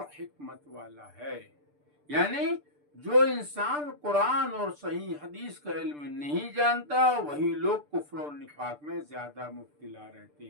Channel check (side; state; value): left; late; 6.8 ms